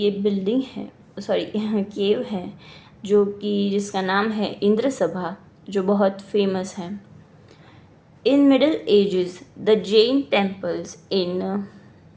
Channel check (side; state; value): both; identical; correlation 1.00